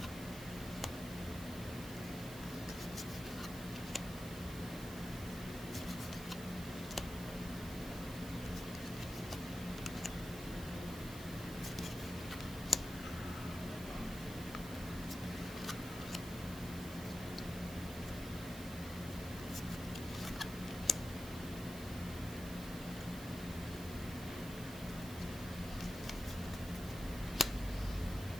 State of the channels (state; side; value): noise; right; hiss, 12 dB below the sound